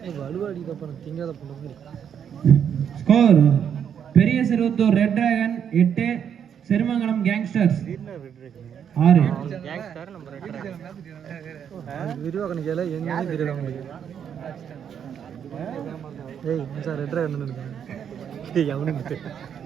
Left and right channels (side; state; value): left; quieter; 8.3 dB